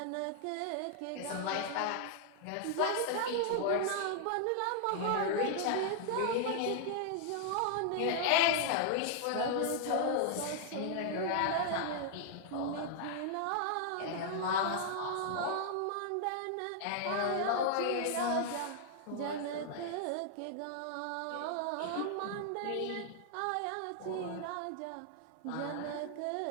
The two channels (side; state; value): both; different; correlation -0.01